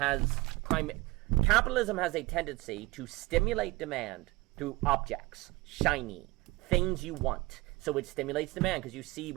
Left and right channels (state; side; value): quieter; left; 21.5 dB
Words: a tendency to stimulate demand through objects, shiny, things you want. So it stimulates demand because you see